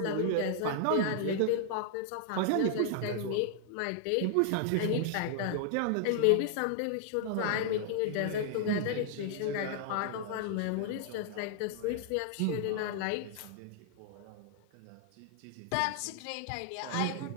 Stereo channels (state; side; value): different; both; correlation -0.01